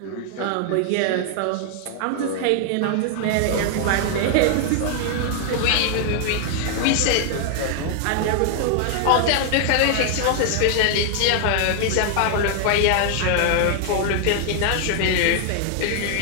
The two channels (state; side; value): different; both; correlation 0.00